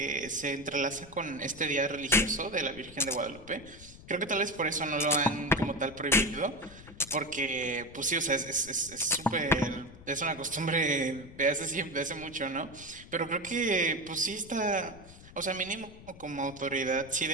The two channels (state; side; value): noise; left; rumble, 18 dB below the sound